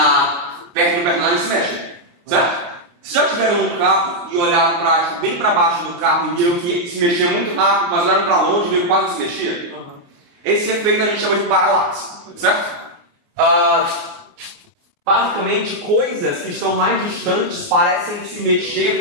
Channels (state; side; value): late; left; 29 ms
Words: perto do personagem se mexem, certo? Se já tiveram um carro e olharam bem para baixo do carro e viram que se mexia muito rápido, mas olharam para longe e viram que quase não se mexia? Esse efeito a gente chama de paralaxe, certo? Basicamente, coisas que estão mais distantes parecem se mexer